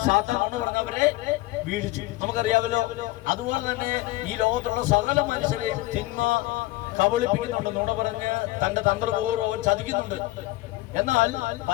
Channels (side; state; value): right; quieter; 18.7 dB